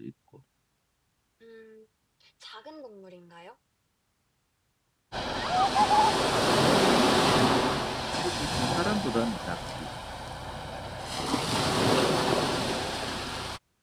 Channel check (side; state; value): both; identical; correlation 1.00